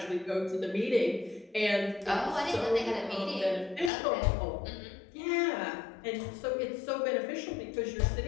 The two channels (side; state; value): right; drops out; at 3.9 s